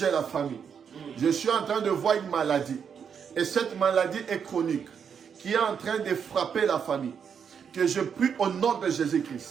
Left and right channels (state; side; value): quieter; left; 7.1 dB